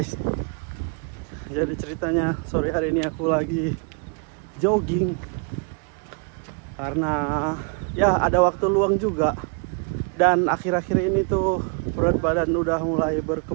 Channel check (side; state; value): left; quieter; 38.9 dB